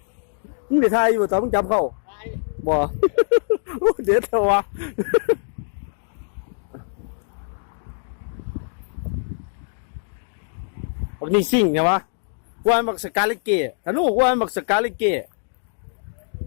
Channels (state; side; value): silent; right; digital silence